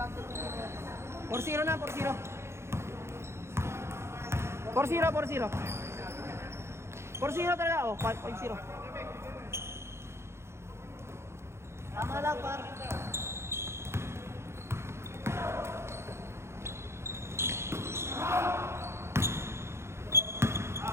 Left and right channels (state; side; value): late; left; 0.13 ms